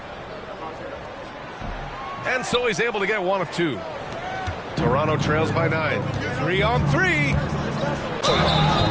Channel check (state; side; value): identical; both; correlation 1.00